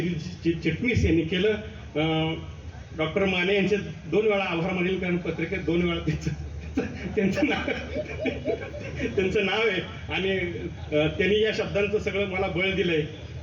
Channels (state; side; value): identical; both; correlation 1.00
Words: चिटणीस यांनी केलं. डॉक्टर माने यांचे 2 वेळा आभार मानेल, कारण पत्रिकेत 2 वेळा त्यांचं नाव आहे आणि त्यांनी या शब्दांचं सगळं मला बळ दिलंय.